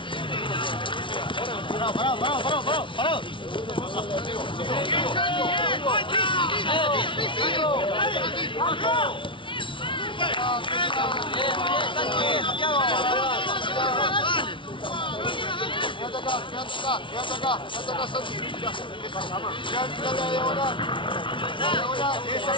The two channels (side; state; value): right; late; 0.25 ms